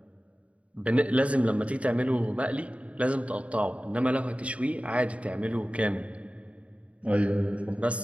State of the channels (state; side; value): late; left; 0.064 ms